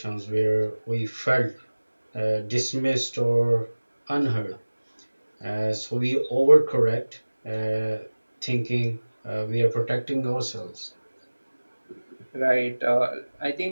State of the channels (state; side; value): inverted; both; correlation -1.00